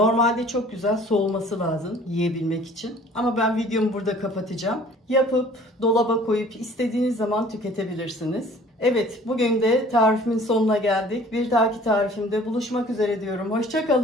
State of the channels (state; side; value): normal; both; correlation 0.51